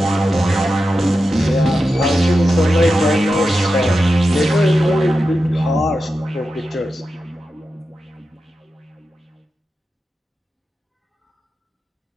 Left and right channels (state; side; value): normal; both; correlation 0.90